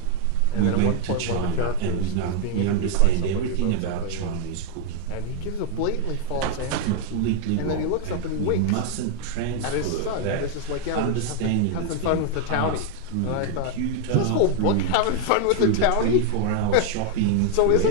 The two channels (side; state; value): both; different; correlation 0.00